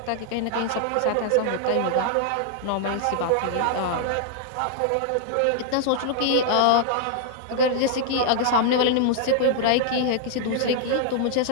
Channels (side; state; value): both; different; correlation -0.01